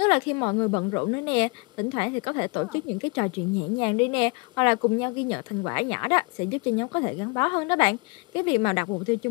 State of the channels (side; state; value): right; quieter; 30.2 dB